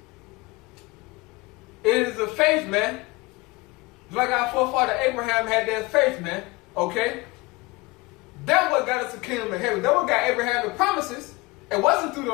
It is a faith, man. Like our forefather Abraham had that faith, man. Okay? That what got us the kingdom of heaven. That what got Abraham the promises. It wasn't through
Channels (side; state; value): right; quieter; 23.4 dB